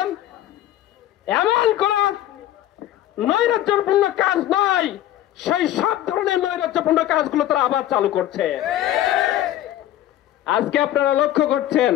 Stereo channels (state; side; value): quieter; right; 13.0 dB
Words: এমন কোন নৈরাজ্যপূর্ণ কাজ নয়, সেই সব ধরনের নৈরাজ্যপূর্ণ কাজগুলো তারা আবার চালু করছে। আজকে আপনারা লক্ষ্য করছেন